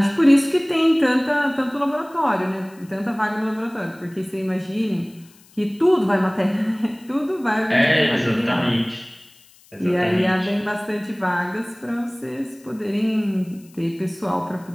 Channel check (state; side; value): noise; left; hiss, 27 dB below the sound